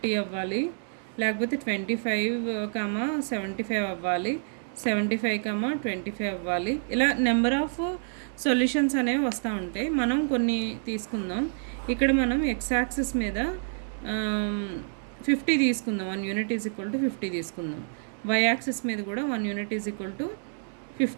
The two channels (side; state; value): left; silent; 59 dB below the other